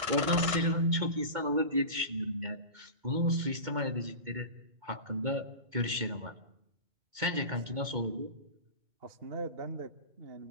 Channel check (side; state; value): left; late; 2.2 ms